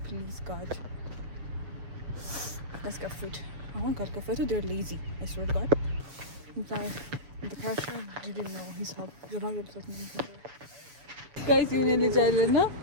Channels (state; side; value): late; left; 7.1 ms